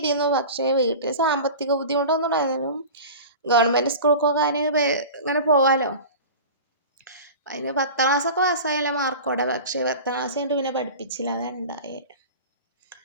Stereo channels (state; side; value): inverted; both; correlation -0.34